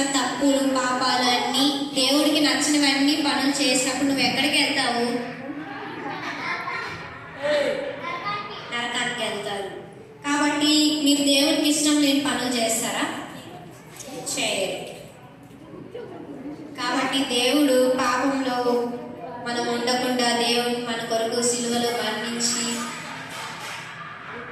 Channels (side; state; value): both; identical; correlation 1.00